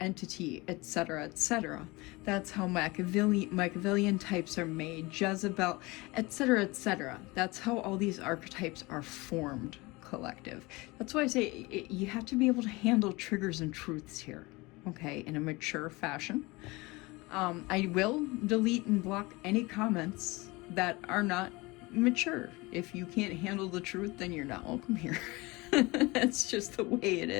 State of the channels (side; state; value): right; quieter; 23.5 dB